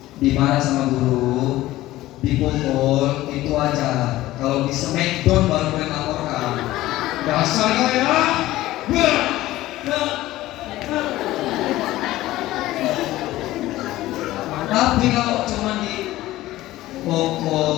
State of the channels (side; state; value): right; quieter; 16.3 dB